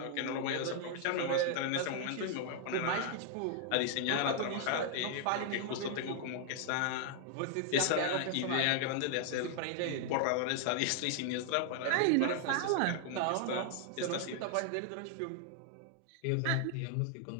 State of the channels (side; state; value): both; different; correlation 0.00